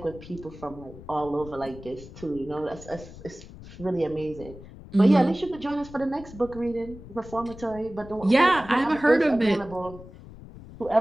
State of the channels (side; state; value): left; noise; rumble, 16 dB below the sound